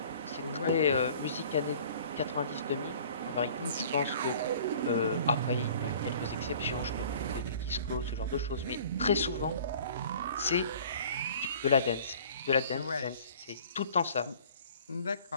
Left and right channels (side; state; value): both; inverted; correlation -0.49